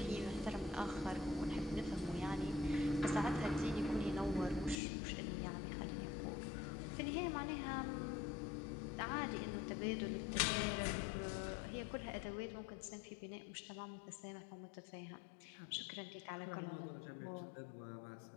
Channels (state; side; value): drops out; right; at 4.8 s